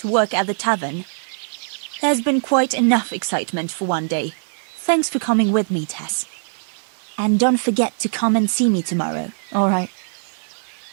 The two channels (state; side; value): silent; left; digital silence